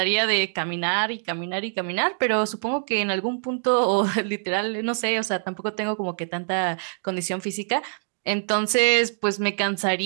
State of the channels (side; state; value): left; silent; digital silence